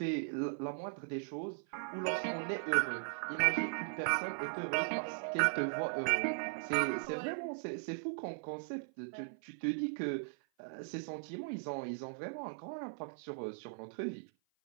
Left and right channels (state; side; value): silent; left; 52 dB below the other